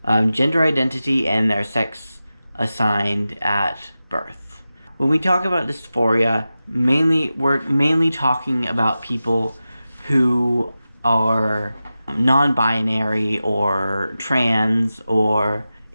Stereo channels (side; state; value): both; inverted; correlation -0.93